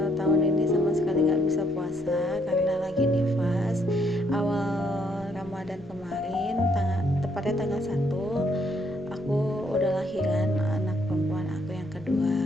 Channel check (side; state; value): left; noise; rumble, 24 dB below the sound